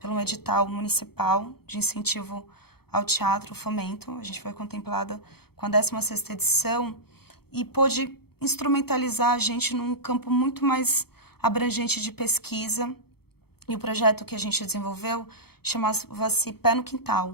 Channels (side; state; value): right; late; 0.96 ms